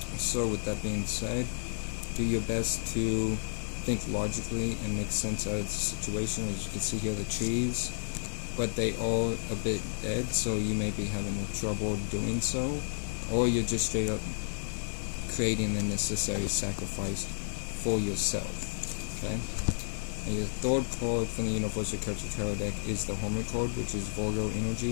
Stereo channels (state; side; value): silent; right; 55 dB below the other